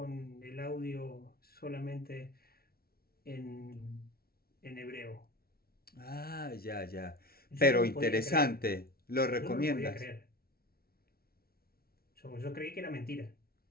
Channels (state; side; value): late; right; 0.44 ms